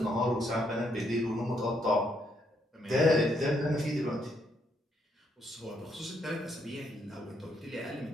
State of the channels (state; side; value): normal; both; correlation 0.74